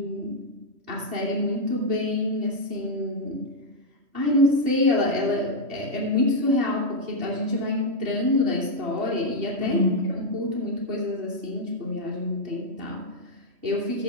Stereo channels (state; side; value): late; left; 3.1 ms